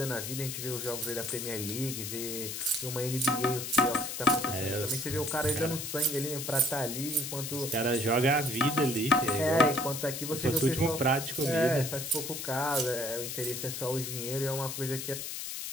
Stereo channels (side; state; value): left; noise; hiss, 5 dB below the sound